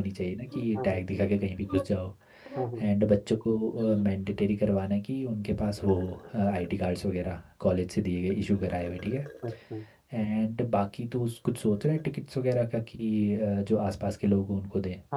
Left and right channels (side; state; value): both; identical; correlation 1.00